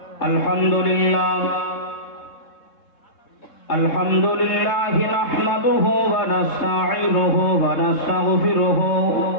আলহামদুলিল্লাহ الحمد لله نحمده ونستعينه ونستغفره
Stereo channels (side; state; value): right; late; 3.7 ms